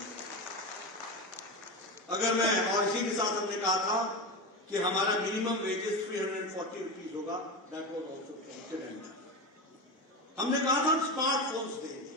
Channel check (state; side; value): normal; both; correlation 0.20